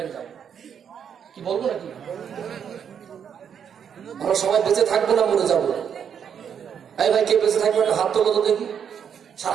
যাবো কি বলবো নাকি? আমরা সবাই বেঁচে থাকবো না মরে যাবো? এই ভাই কে বেঁচে থাকবে একটা হাত তোলো তো দেখি।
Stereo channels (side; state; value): left; quieter; 7.9 dB